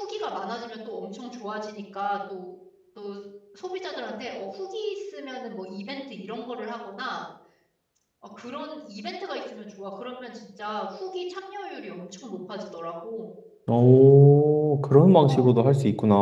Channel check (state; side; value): identical; both; correlation 1.00